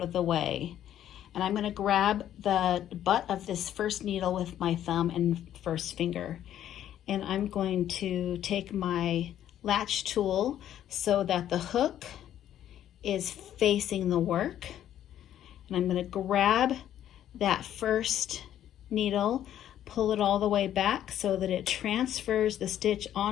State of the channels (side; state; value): right; quieter; 11.2 dB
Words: of the way, and I'm going to grab the butt of this first needle with my thumb and first finger, and I'm going to take my latch tool so that the hook is facing the work, and I'm going to grab that first needle, pull it all the way back so that it transfers the stitch